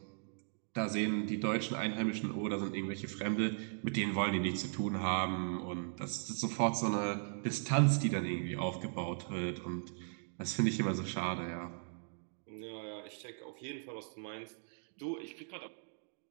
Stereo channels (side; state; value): left; silent; digital silence